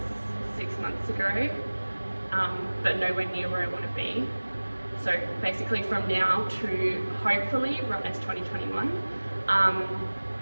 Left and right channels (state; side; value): inverted; both; correlation -1.00